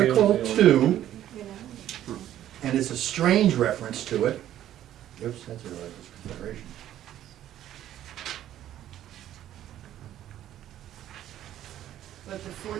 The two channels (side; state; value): left; quieter; 12.1 dB